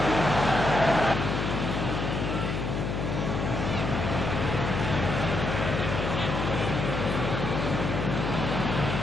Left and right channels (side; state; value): left; noise; hum, 2 dB below the sound